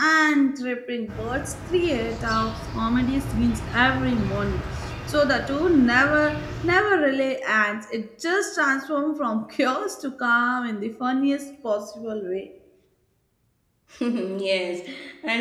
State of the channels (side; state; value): both; identical; correlation 1.00